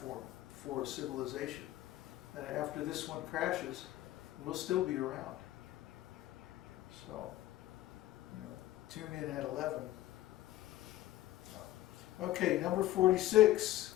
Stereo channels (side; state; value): right; quieter; 15.0 dB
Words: for civilization. And after this one crashes, we'll still be around. So, tune in at 11. Okay, number 46.